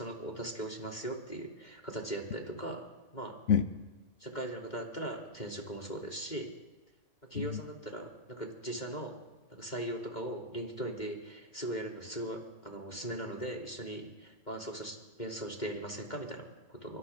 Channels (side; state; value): right; late; 2.1 ms